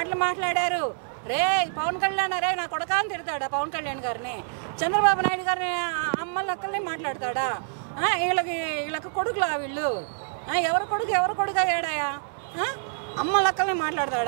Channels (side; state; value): left; silent; digital silence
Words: మాట్లాడారు? రే పవన్ కళ్యాణ్ రే నా కొడకా అని తిడతాడా పవన్ కళ్యాణ్ గారిని? చంద్రబాబు నాయుడు గారిని అమ్మలక్కల్ని మాట్లాడతాడా? వీళ్ళకి కొడుకులా వీళ్ళు? ఎవరు కొడుకు అయ్యాడాయా? అమ్మ లక్కల్ని